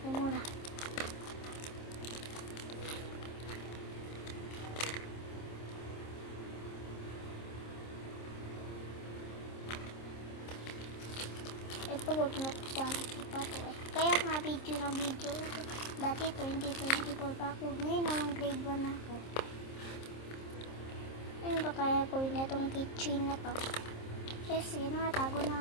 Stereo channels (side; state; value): right; late; 26 ms